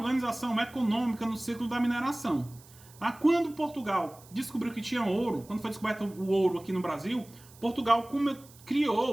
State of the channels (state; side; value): noise; right; hiss, 23 dB below the sound